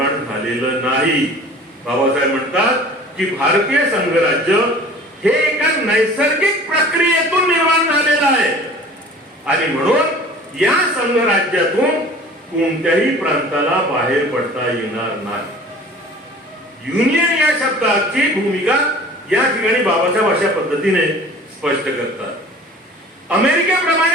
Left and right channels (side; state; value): both; normal; correlation 0.45